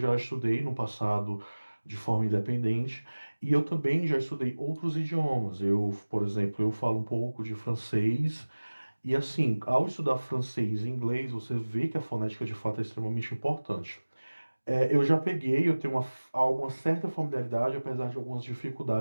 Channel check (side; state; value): both; inverted; correlation -1.00